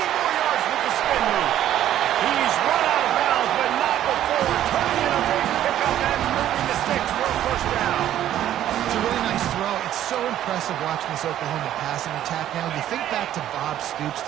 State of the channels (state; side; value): quieter; left; 11.9 dB